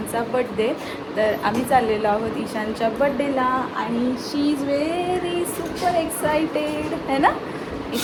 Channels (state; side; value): identical; both; correlation 1.00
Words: बड्डे. तर आम्ही चाललेलो आहोत ईशानच्या बड्डेला आणि शी इज व्हेरी सुपर एक्सायटेड है ना.